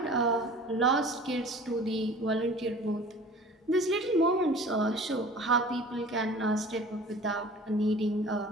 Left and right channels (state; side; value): normal; both; correlation 0.44